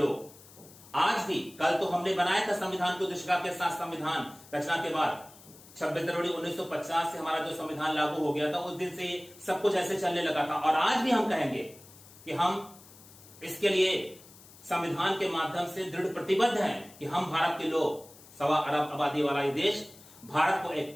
आज भी, कल तो हमने बनाया था संविधान की उद्देशिका के साथ संविधान रचना के बाद 26 जनवरी 1950 से हमारा जो संविधान लागू हो गया था, उस दिन से सब कुछ ऐसे चलने लगा था और आज भी हम कहेंगे कि हम इसके लिए संविधान के माध्यम से दृढ़ प्रतिबद्ध हैं कि हम भारत के लोग, 1.25 अरब आबादी वाला ये देश, भारत को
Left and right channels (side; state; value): left; noise; hiss, 22 dB below the sound